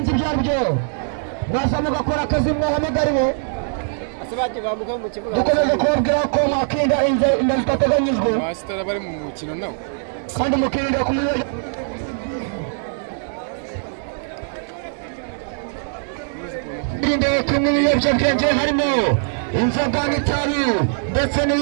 ibyo ari byo. Mwaza mugakora akazi mwahamagariwe. Dukomeze kubabwira ko mwakirinda inda zitateganyijwe abasitari bari mu mukino nawe kandi mukirinda kumenya kunywa ibiyobyabwenge harimo inzoga n'itabi ndetse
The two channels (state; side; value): silent; left; 64 dB below the other